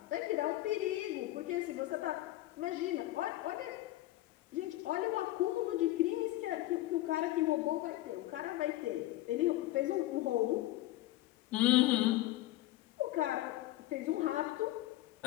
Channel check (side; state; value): right; quieter; 16.3 dB